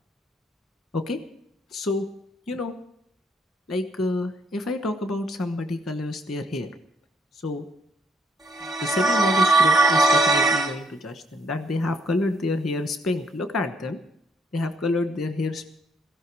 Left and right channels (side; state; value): both; normal; correlation 0.70